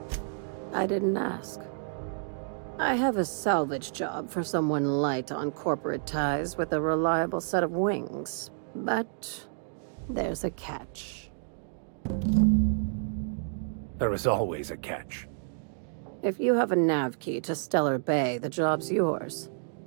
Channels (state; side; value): silent; left; digital silence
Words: I didn't ask. I have a salvage job for someone light on corporate ties with a reliable set of wings, but there's a catch. There is always a catch. If you have a nav key to Stellar Bay, the job's yours.